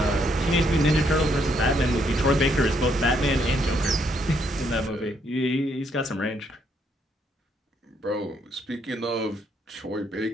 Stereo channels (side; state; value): both; normal; correlation 0.73